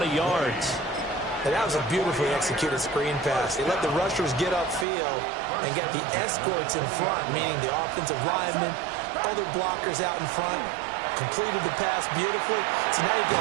yards. And that was a beautifully executed screen pass. They let the rushers get upfield and got the escorts in front, meaning the offensive linemen, other blockers out in front, completed the pass beautifully. So now you've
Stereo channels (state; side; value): drops out; left; at 4.9 s